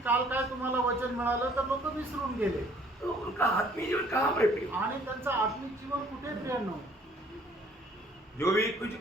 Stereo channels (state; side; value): normal; both; correlation 0.58